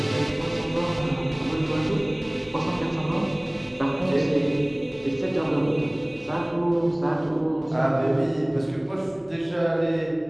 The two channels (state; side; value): noise; left; hum, 30 dB below the sound